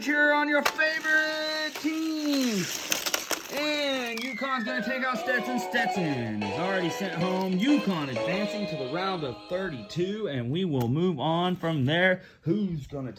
cheer on your favorite teams. And Yukon's going to take out Stetson. Stetson is already sent home. Yukon advancing to the round of 32, and we will move on from there. Who's going to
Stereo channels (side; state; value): both; identical; correlation 1.00